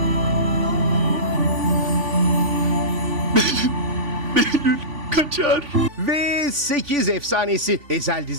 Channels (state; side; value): late; left; 3.5 ms